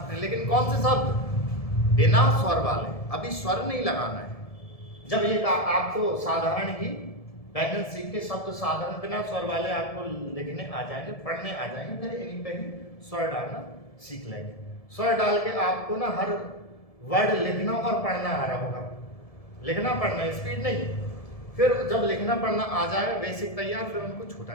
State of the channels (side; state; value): right; late; 1.7 ms